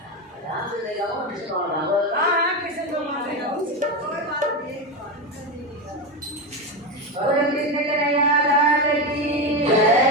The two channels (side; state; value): both; normal; correlation 0.15